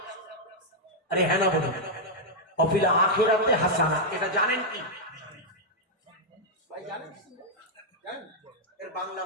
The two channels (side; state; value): both; normal; correlation -0.03